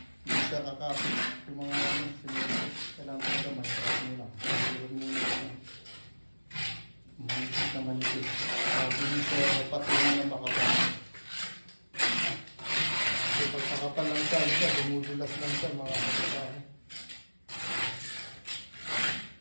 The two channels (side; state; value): both; inverted; correlation -1.00